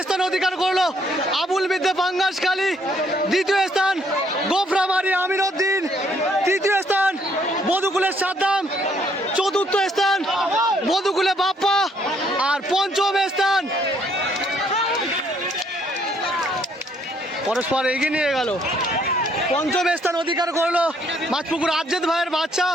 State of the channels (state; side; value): normal; both; correlation 0.68